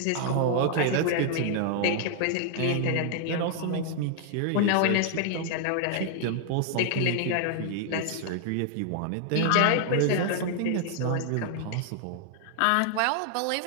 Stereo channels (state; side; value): different; both; correlation 0.00